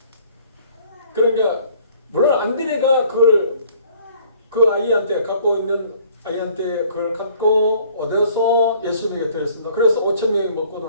그러니까 물론 안드레가 그걸 그 아이한테 갖고 있는 아이한테 그걸 갖고 얻어서 예수님에게 드렸습니다. 그래서 5,000명이 먹고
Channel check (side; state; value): both; inverted; correlation -0.57